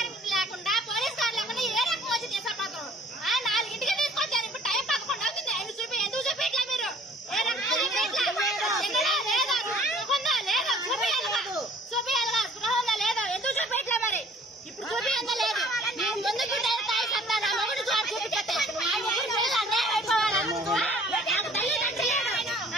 లేకుండా police car లేకుండా ఏ రకం వచ్చి తీసుకుపోతారు? 4ంటికి తీసుకొచ్చారు. ఇప్పుడు టైం 11 అవుతుంది. ఎందుకు చూపించట్లా మీరు? ఏ రకం చూపించాలిగా స్పృహ ఉందా లేదా? ఎందుకు చూపించట్లే మరి? ఇప్పుడు చూపించదా లేదు. నేను ముందుకు తాయి సత్తా నా మొగుడు జాబ్ చూపించేస్తే నాకు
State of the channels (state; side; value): normal; both; correlation 0.54